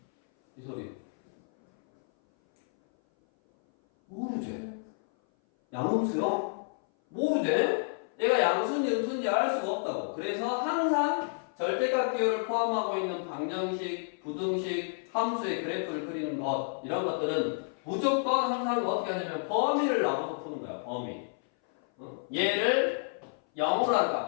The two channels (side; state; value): right; silent; 57 dB below the other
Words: 이 소리 양음수요? 모르지? 얘가 양수인지 음수인지 알 수가 없다고. 그래서 항상 절대값 기호를 포함하고 있는 방정식, 부등식, 함수의 그래프를 그리는 것 이런 것들은 무조건 항상 어떻게 하냐면 범위를 나눠서 푸는 거야. 범위. 얘를 0으로 하는